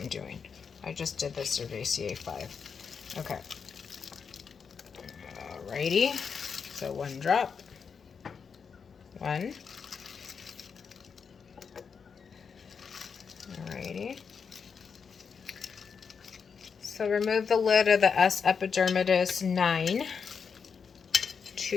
doing. I just did the Cerevisiae 5. Okay. Alrighty. So 1 drop. 1. Alrighty. So remove the lid of the S. epidermidis 9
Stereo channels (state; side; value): quieter; right; 6.1 dB